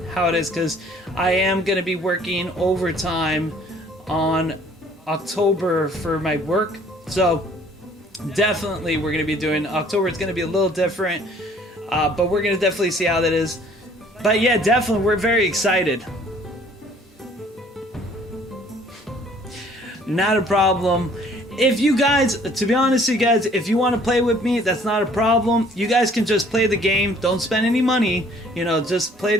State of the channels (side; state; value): both; normal; correlation 0.57